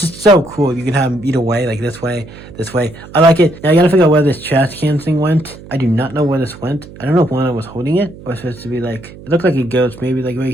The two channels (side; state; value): right; noise; hum, 18 dB below the sound